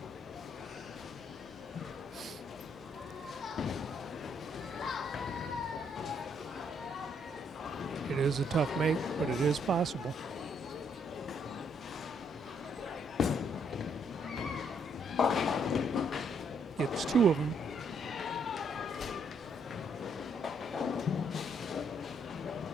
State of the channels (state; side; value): normal; both; correlation 0.71